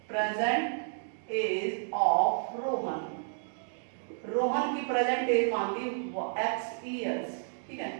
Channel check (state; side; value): silent; left; digital silence